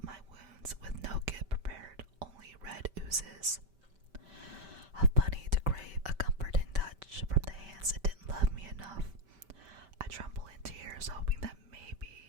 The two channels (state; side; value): late; left; 5.2 ms